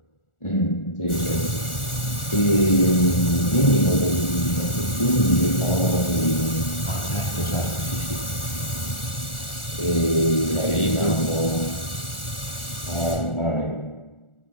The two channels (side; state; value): right; late; 1.4 ms